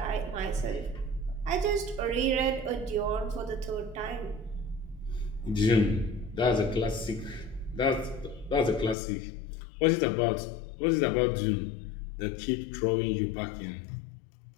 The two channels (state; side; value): drops out; right; at 9.0 s